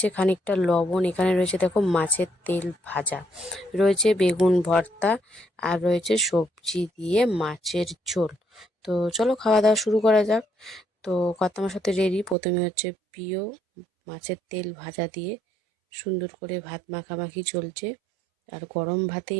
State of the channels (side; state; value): left; drops out; at 12.4 s